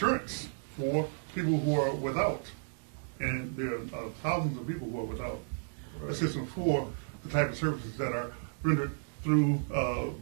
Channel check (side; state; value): left; silent; digital silence